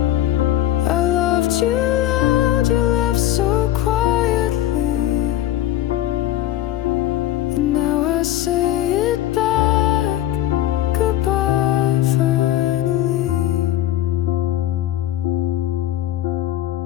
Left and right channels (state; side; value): quieter; right; 13.2 dB